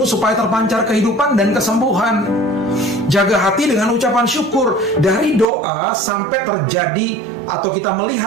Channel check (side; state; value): left; drops out; at 5.5 s